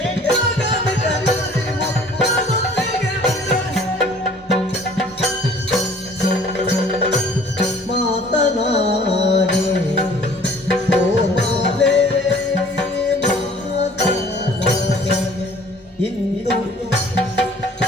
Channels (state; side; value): normal; both; correlation 0.52